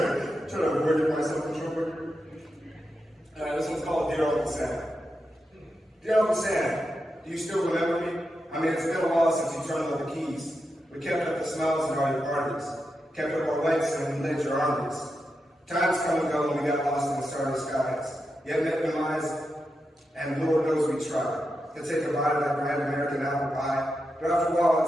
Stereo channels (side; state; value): both; normal; correlation 0.87